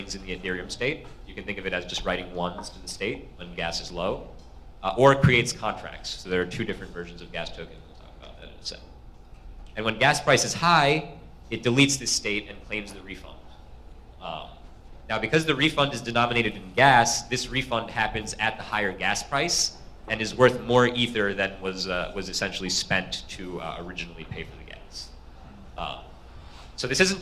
in the Ethereum state. You can think of it as just writing ones to the state when gas is low, or it creates contracts. So there are two different versions of gas token. We'll talk about that in a second. And when gas price is high, it deletes this state and claims the refund. Now, because the refund is denominated in gas, this refund happens at the higher gas price and is worth more ether than was essentially spent to originally pay for the gas. So this isn't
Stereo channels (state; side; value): identical; both; correlation 1.00